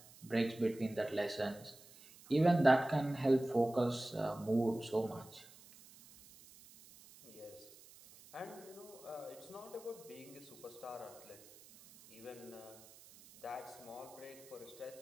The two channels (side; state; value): right; noise; hiss, 21 dB below the sound